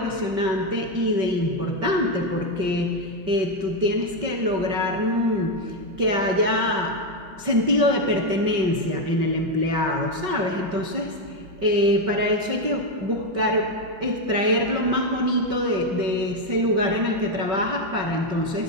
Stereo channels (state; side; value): late; left; 5.3 ms